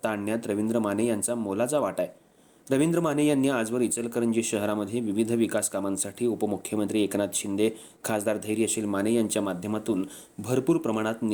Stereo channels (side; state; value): both; identical; correlation 1.00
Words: आणण्यात रवींद्र माने यांचा मोलाचा वाटा आहे. रवींद्र माने यांनी आजवर इचलकरंजी शहरामध्ये विविध विकास कामांसाठी उपमुख्यमंत्री एकनाथ शिंदे, खासदार धैर्यशील माने यांच्या माध्यमातून भरपूर प्रमाणात